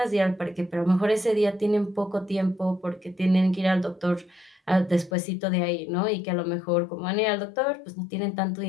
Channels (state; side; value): drops out; right; at 5.1 s